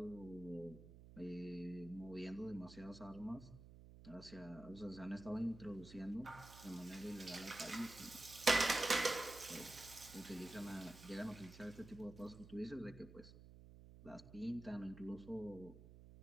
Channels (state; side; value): noise; right; hum, 16 dB below the sound